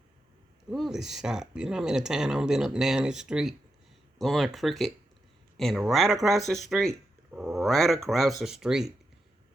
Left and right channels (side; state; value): both; normal; correlation 0.86